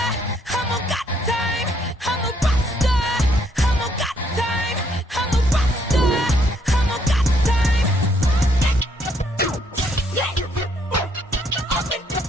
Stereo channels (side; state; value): both; normal; correlation 0.69